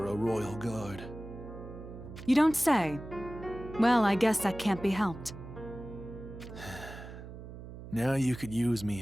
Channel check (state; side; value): noise; right; hum, 12 dB below the sound